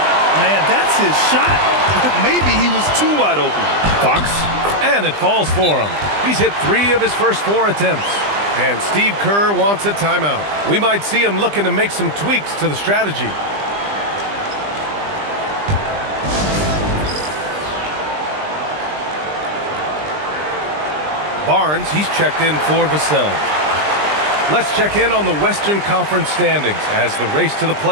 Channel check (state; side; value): late; left; 20 ms